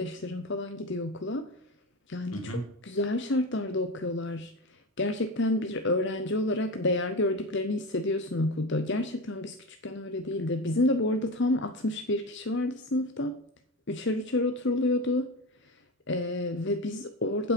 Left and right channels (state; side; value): normal; both; correlation 0.23